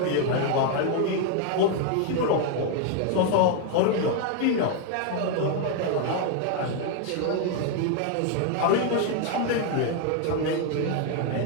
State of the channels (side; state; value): both; different; correlation 0.01